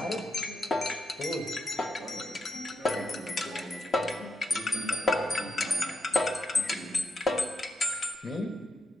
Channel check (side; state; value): both; normal; correlation 0.80